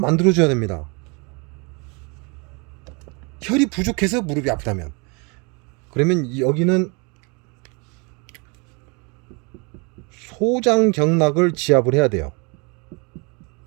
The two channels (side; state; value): left; quieter; 31.2 dB